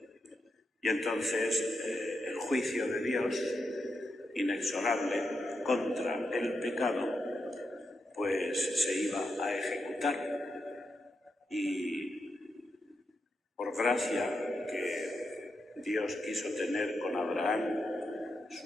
Y entonces el juicio de Dios, inexorable contra el pecado, pues se iba a ejecutar. Y por gracia que Dios quiso tener con Abraham,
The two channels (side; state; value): both; normal; correlation 0.85